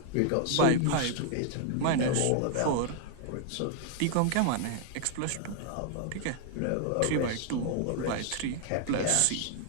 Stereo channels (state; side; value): different; both; correlation 0.00